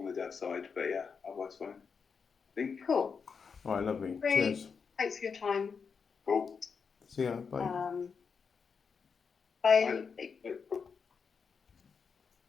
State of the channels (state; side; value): quieter; right; 5.8 dB